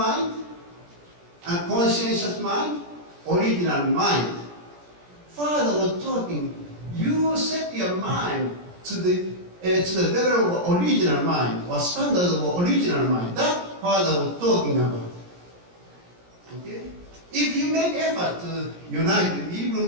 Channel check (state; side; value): late; left; 17 ms